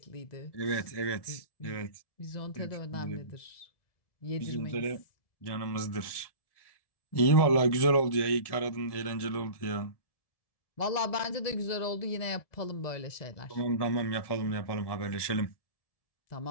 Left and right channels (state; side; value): late; right; 1.7 ms